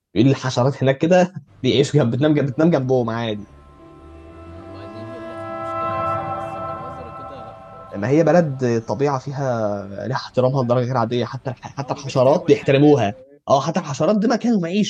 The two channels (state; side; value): identical; both; correlation 1.00